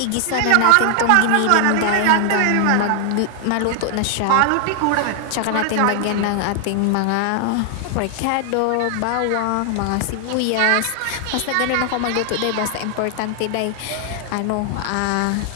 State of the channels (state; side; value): different; both; correlation 0.00